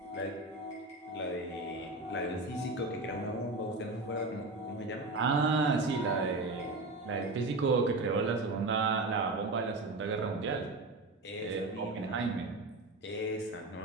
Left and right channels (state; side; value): quieter; left; 3.1 dB